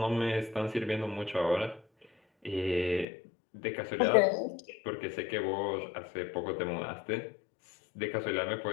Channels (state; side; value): drops out; right; at 3.1 s